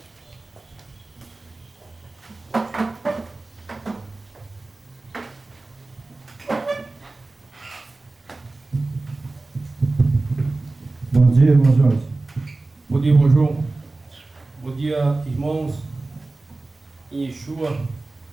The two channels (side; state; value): left; quieter; 3.2 dB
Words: Bom dia, irmão Jorge. Bom dia, irmão João. Bom dia, irmãos. Em Yeshua,